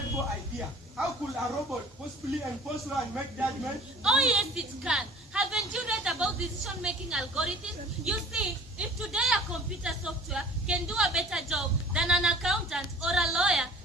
idea. How could a robot possibly enforce law and make judgments? Oh yes, it can. Haven't you read about decision-making algorithms? You see, if today a computer software can do a better job than an accountant or a lawyer,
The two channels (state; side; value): normal; both; correlation 0.48